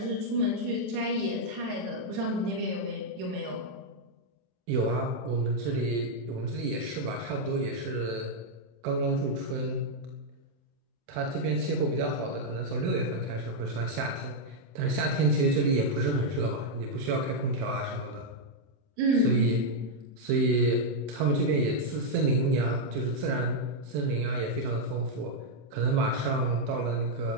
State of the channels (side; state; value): left; late; 27 ms